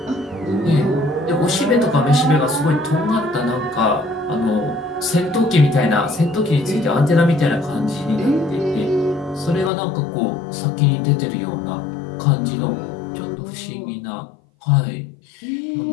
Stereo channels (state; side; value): drops out; right; at 9.7 s